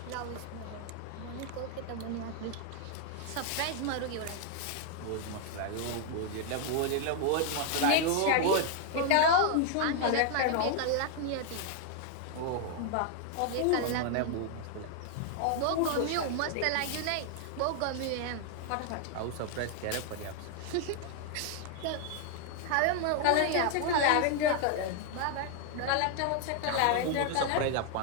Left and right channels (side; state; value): both; different; correlation 0.00